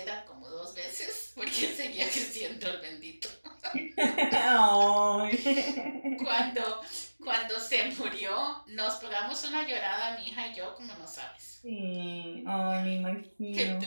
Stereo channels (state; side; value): inverted; both; correlation -1.00